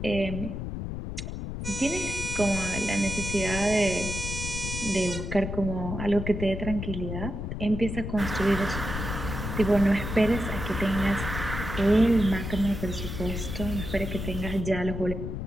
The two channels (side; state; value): left; noise; rumble, 5 dB below the sound